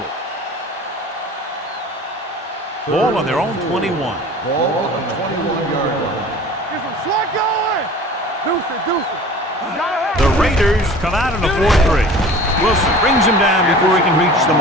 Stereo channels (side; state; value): both; normal; correlation 0.42